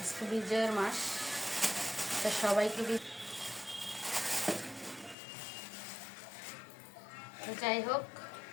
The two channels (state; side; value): drops out; right; at 5.2 s